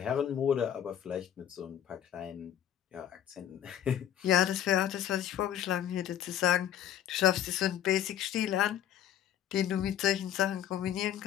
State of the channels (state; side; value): quieter; right; 10.7 dB